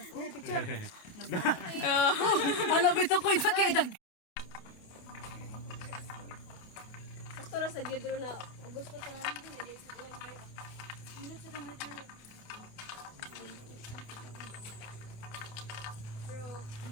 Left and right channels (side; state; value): right; late; 28 ms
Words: Oh. Ano bito ko ito kay dag. Sakto ra sa gidro na gusto ta lang ko dili sa kuwan kayo. Hindi sa dami.